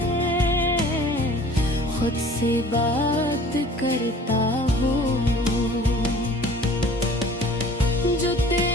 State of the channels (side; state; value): both; normal; correlation 0.48